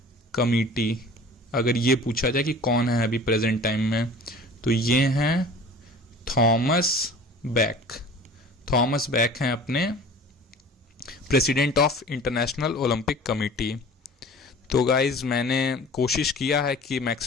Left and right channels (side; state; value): both; normal; correlation 0.43